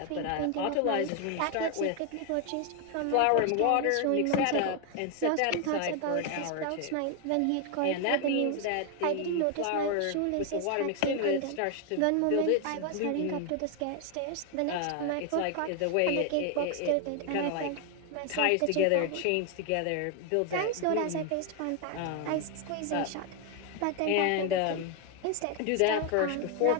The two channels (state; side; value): different; both; correlation 0.01